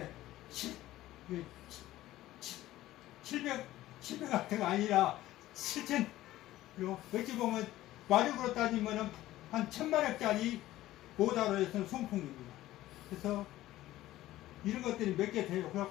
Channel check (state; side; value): quieter; right; 15.4 dB